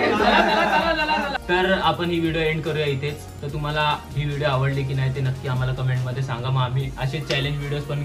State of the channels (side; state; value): both; identical; correlation 1.00